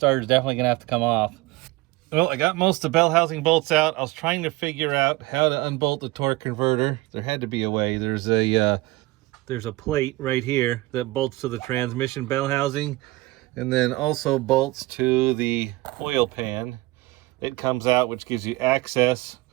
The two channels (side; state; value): left; quieter; 20.5 dB